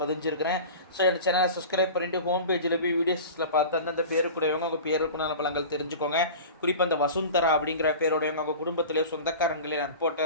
பதிஞ்சிருக்கிறேன். ஸோ இந்த சேனலை சப்ஸ்கிரைப் பண்ணிட்டு ஹோம் பேஜில் போய் வீடியோஸில் பார்த்து அந்தந்த பேருக்குடையவங்க உங்கள் பேருக்குண்டான பலன்கள் தெரிஞ்சுக்கோங்க. குறிப்பாக அந்த வசுந்தரா அப்படிங்கிற பேருடையவங்க உங்கள் குடும்பத்திலே சொந்தக்காரங்களே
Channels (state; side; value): inverted; both; correlation -0.35